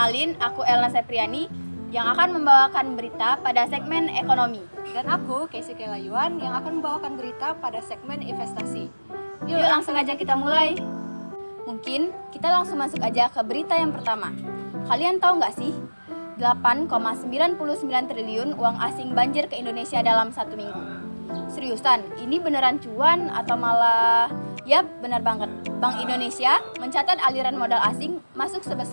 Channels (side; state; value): both; inverted; correlation -1.00